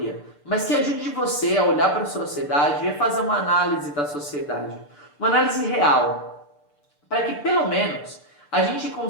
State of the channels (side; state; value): right; late; 6.8 ms